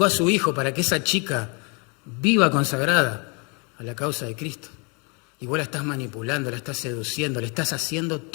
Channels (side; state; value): right; quieter; 32.5 dB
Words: a su hijo para que esa chica viva consagrada a la causa de Cristo. Y vos la estás manipulando, la estás seduciendo, le estás haciendo